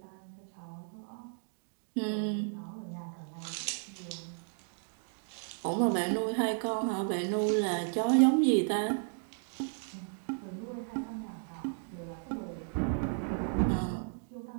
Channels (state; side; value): silent; left; 55 dB below the other